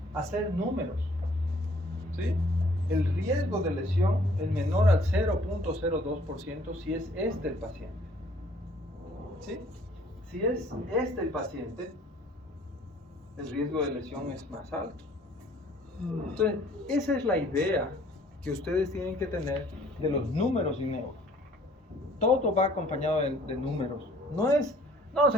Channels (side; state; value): both; normal; correlation 0.58